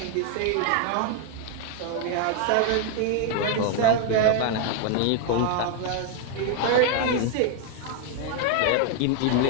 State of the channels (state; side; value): different; both; correlation 0.00